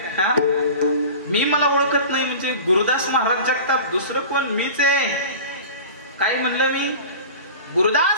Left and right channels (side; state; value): both; inverted; correlation -0.36